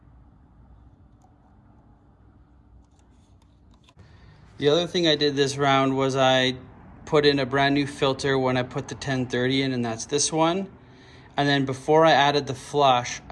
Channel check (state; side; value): identical; both; correlation 1.00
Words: The other thing I did this round was I put in a brand new filter when I put the 1030 in, and that's this one. And then before I added the flush,